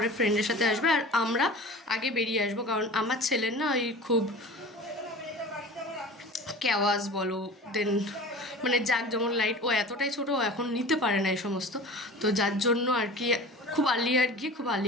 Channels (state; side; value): normal; both; correlation 0.38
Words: ফ্রেন্ডের সাথে আসবে, আর আমরা আগে বেরিয়ে আসবো, কারণ আমার ছেলের না ওই খুব ক্যাওয়াজ বলো, দেন মানে জাক যেমন লাইট, ও এতটাই ছোটো, ও এখন নিতে পারে না এই সমস্ত। তো যার জন্য আর কি খুব আর্লিয়ার গিয়ে খুব